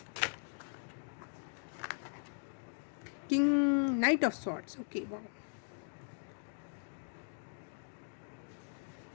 King, night of swords, okay, wow.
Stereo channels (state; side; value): silent; right; digital silence